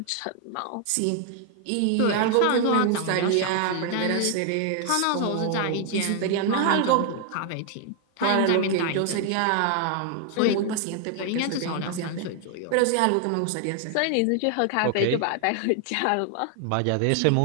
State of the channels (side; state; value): both; different; correlation 0.00